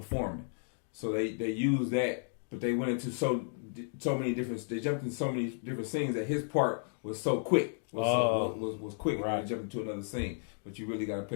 so they used that, but they went into so many different. They jumped into so many different scenes that his part was so quick. Was quick. Right. When they jumped into another scene, but you really got to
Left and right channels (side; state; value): right; silent; digital silence